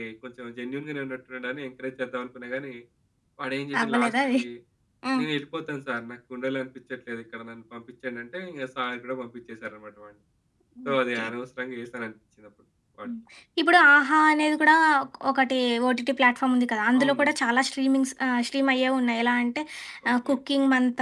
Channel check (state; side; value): identical; both; correlation 1.00